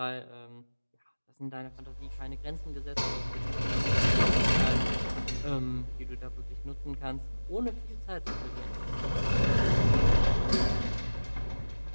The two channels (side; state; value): both; inverted; correlation -1.00